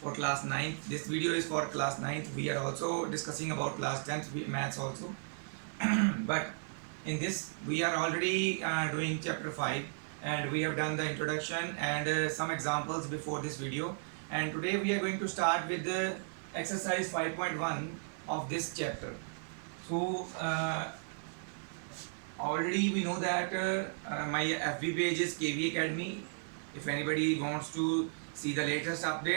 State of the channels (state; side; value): silent; left; 54 dB below the other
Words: for class 9th. This video is for class 9th. We are also discussing about class 10th maths also. But in this we are already doing chapter 5, and we have done the introduction and some examples before this video, and today we are going to start with the exercise 5.1 of this chapter. So already we know that my FB page is KV Academy. If anybody wants to see the latest